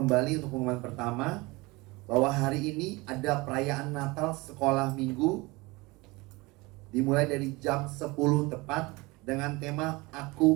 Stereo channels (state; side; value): quieter; left; 23.6 dB